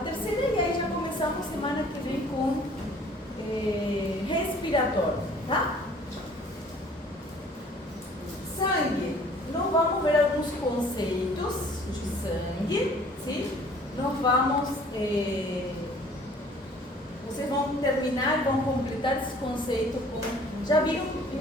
e aí já começamos semana que vem com respiratório, tá? Sangue, nós vamos ver alguns conceitos de sangue, sim? Nós vamos, vocês vão terminar, vão completar esse conceito com, já viram em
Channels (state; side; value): normal; both; correlation 0.53